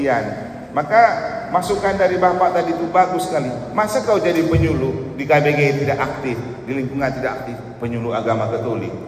Maka masukan dari Bapak tadi itu bagus sekali. Masa kau jadi penyuluh di KBG tidak aktif, di lingkungan tidak aktif, penyuluh agama Katolik?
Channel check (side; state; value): both; identical; correlation 1.00